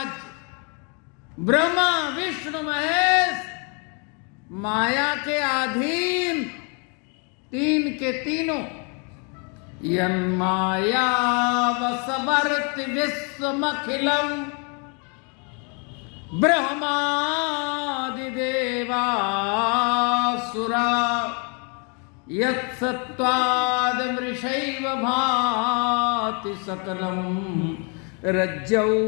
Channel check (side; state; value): right; quieter; 36.1 dB